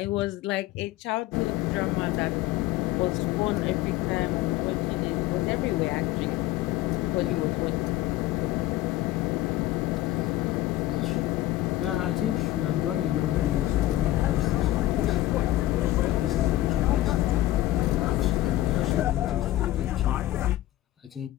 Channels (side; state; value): right; quieter; 15.6 dB